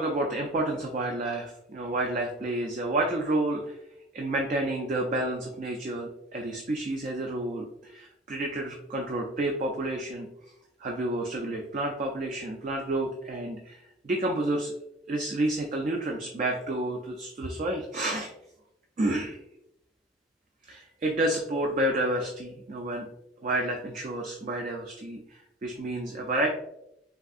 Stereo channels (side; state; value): both; normal; correlation 0.40